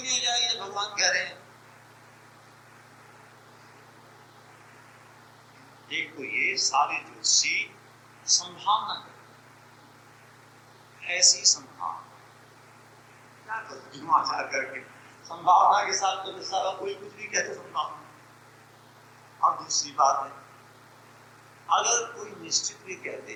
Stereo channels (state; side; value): identical; both; correlation 1.00